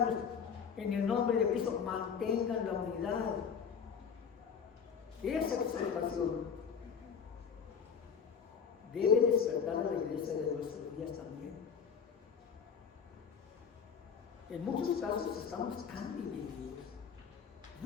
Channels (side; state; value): right; quieter; 6.7 dB